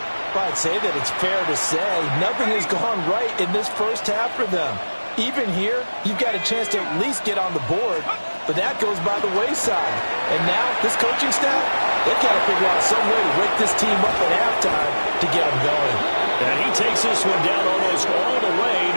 Well, I'd say that it's fair to say nothing has gone right in this first half for them. Even here, you've got a chance to at least get on the board, but that goes by the wayside. And now, this coaching staff, they've got to figure out some way to wake this team up at halftime to get them going. And he takes this one down almost all the way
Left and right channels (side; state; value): both; inverted; correlation -1.00